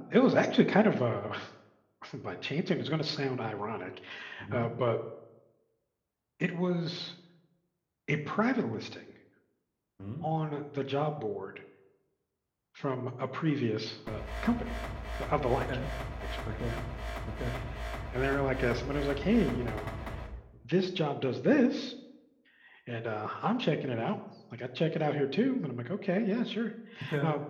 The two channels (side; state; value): both; identical; correlation 1.00